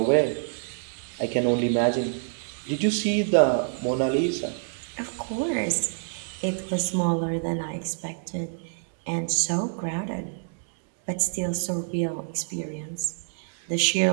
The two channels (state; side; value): silent; left; digital silence